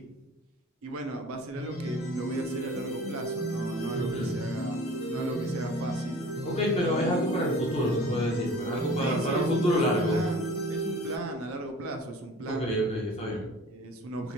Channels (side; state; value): both; normal; correlation 0.44